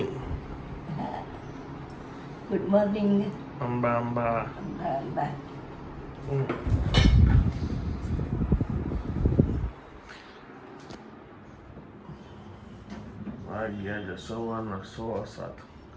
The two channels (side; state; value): both; identical; correlation 1.00